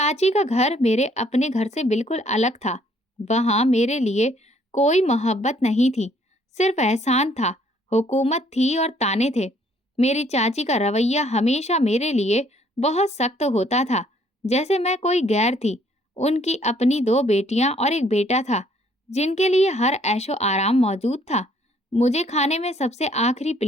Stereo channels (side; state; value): both; normal; correlation 0.63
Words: का घर मेरे अपने घर से बिल्कुल अलग था। वहां मेरे लिए कोई मोहब्बत नहीं थी, सिर्फ एहसान था, हुकूमत थी और ताने थे। मेरी चाची का रवैया हमेशा मेरे लिए बहुत सख्त होता था, जैसे मैं कोई गैर थी। उनकी अपनी दो बेटियां और एक बेटा था, जिनके लिए हर ऐशो आराम मौजूद था। मुझे खाने में सबसे आखिरी